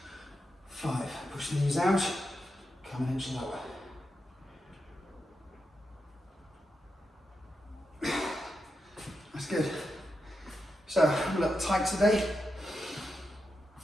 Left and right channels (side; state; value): both; normal; correlation 0.87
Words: 5. Push the knees out, come an inch lower. That's good. So I'm a little tight today.